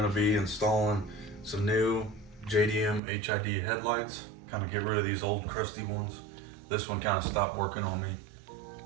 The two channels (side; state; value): left; drops out; at 3.0 s